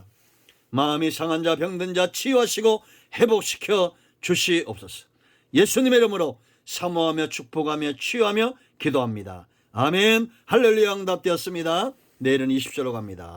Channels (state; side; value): identical; both; correlation 1.00